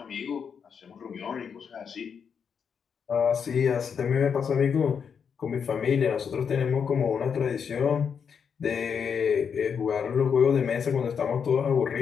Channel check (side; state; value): right; quieter; 6.8 dB